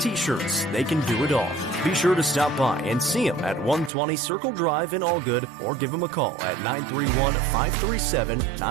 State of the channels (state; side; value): drops out; left; at 3.9 s